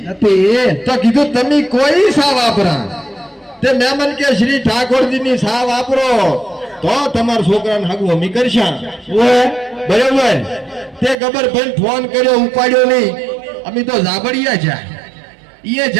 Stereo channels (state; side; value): drops out; left; at 11.2 s